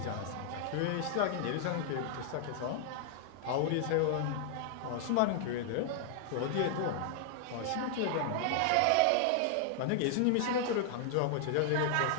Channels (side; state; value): both; different; correlation 0.00